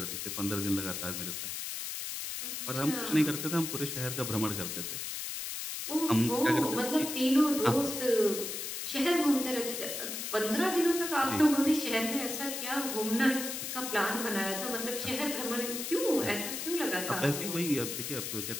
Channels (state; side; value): noise; left; hiss, 5 dB below the sound